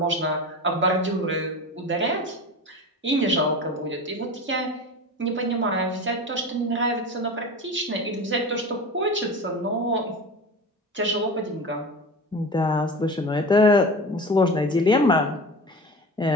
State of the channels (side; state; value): both; normal; correlation 0.31